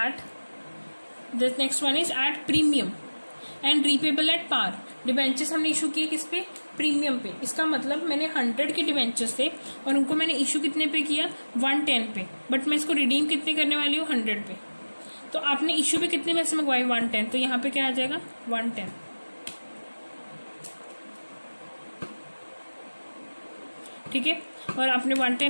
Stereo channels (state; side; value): inverted; both; correlation -1.00